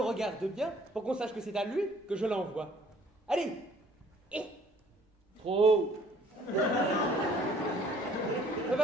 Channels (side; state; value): both; normal; correlation 0.58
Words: regarde bien pour qu'on sache que c'est à lui que je l'envoie. Allez. Trop. On